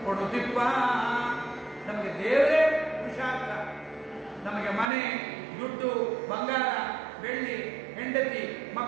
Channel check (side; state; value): left; drops out; at 4.9 s